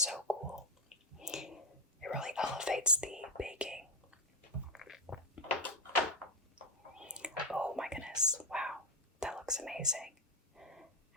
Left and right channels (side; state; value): both; normal; correlation 0.08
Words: cool. It really elevates the baking. Oh my goodness, wow, that looks amazing.